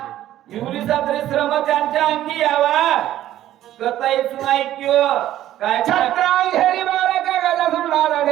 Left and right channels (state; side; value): quieter; left; 13.0 dB